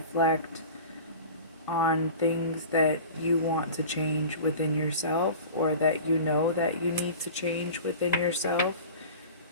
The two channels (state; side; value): inverted; both; correlation -0.37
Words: on things that you want to change within yourself, or that you know that you need to change within yourself.